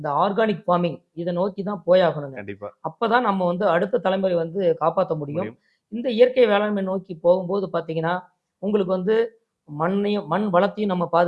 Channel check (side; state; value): both; identical; correlation 1.00